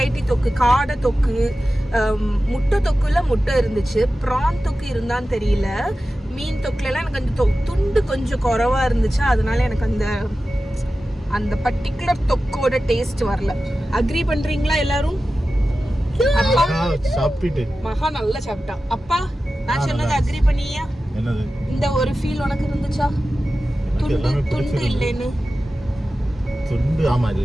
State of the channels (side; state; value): both; normal; correlation 0.94